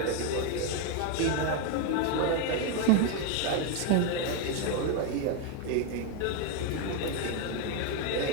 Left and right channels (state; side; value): different; both; correlation 0.02